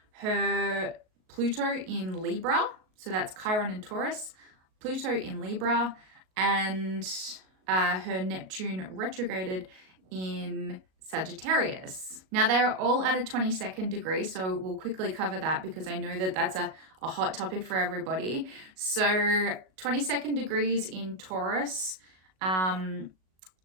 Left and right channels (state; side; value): late; left; 38 ms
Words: her Pluto in Libra, so that's Chiron in Taurus, Pluto in Libra, and her Neptune retrograded in Sagittarius. Now they're all at a 22nd degree, so we'll quickly cover that because I know that that's a hot topic for everybody. So 22nd degrees in Taurus